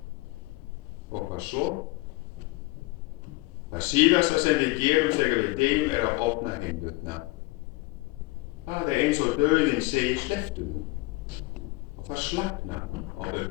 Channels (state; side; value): quieter; right; 22.9 dB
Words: Og hvað svo? Það síðasta sem við gerum þegar við deyjum að opna hendurnar. Það eins og dauðinn segir slepptu nú og það slagnar á